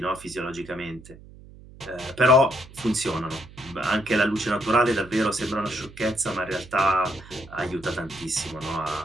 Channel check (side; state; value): right; noise; hum, 20 dB below the sound